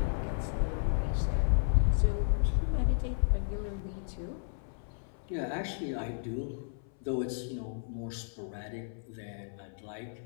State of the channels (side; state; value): right; silent; 56 dB below the other